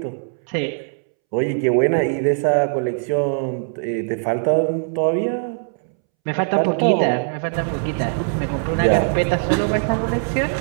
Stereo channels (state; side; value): silent; left; 65 dB below the other